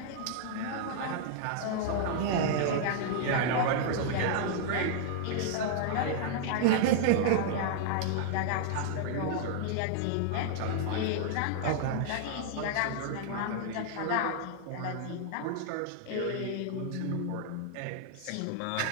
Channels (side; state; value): both; different; correlation -0.01